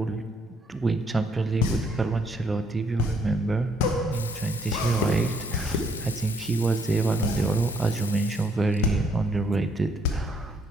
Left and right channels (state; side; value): normal; both; correlation 0.68